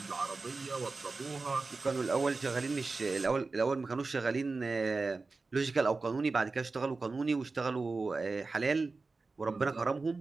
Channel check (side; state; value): left; quieter; 3.9 dB